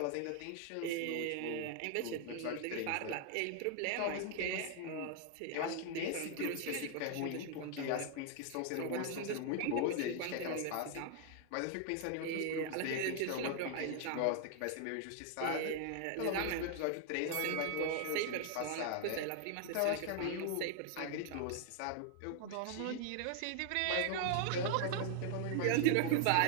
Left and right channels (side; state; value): both; different; correlation 0.00